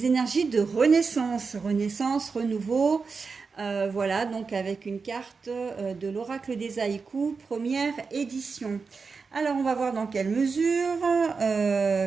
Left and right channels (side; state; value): left; quieter; 4.8 dB